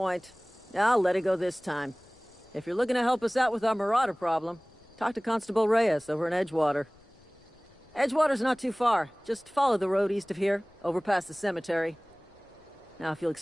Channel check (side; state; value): left; noise; rumble, 30 dB below the sound